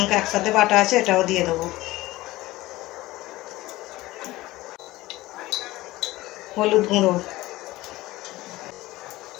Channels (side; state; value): right; quieter; 18.3 dB